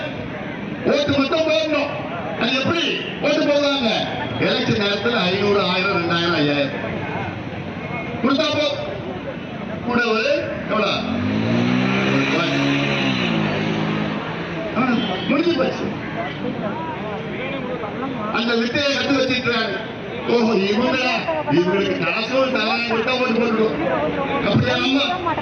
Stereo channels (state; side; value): identical; both; correlation 1.00